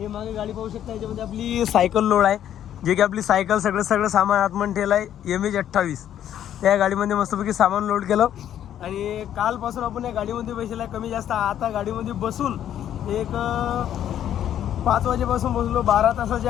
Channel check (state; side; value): quieter; right; 10.6 dB